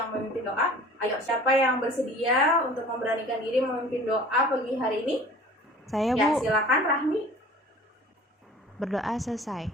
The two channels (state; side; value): normal; both; correlation 0.45